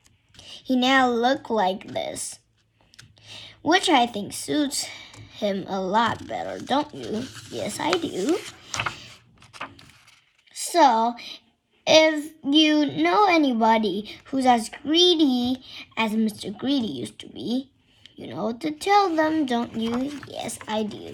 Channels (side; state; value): both; identical; correlation 1.00